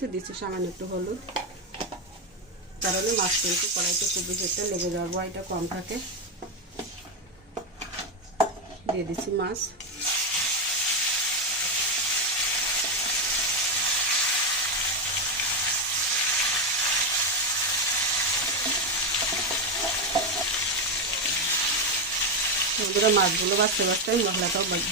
দিচ্ছি সামান্য একটু হলুদ, কারণে মাছ কিন্তু কড়াইতে খুব বেশি একটা লেগে যাওয়ার ভয়টা কম থাকে। দিয়ে দিচ্ছি মাছ। বন্ধুরা মাছগুলো বাছতে বাছতে আমি মশলাটাও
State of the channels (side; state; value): both; normal; correlation 0.07